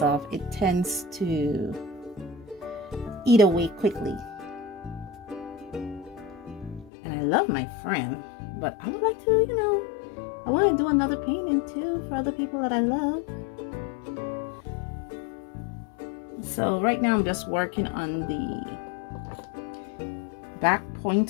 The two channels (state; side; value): drops out; right; at 6.9 s